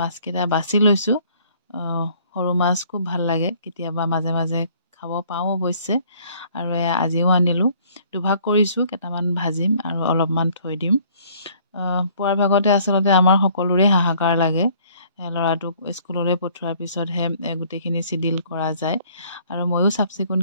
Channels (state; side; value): inverted; both; correlation -0.58